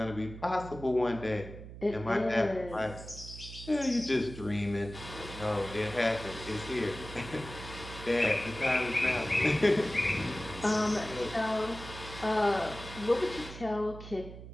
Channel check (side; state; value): right; noise; hum, 13 dB below the sound